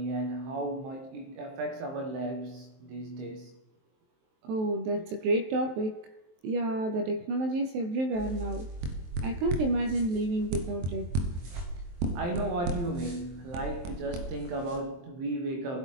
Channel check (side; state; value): left; late; 23 ms